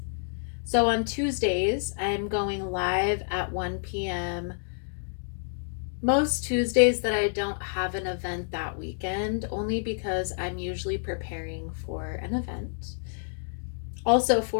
So on Tuesdays, I'm going live at 1 p.m. Most Tuesdays that I don't have an event that weekend, only because I'm usually preparing for an event. Also,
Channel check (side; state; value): right; silent; digital silence